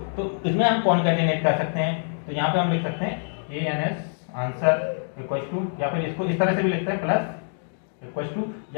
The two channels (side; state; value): right; silent; digital silence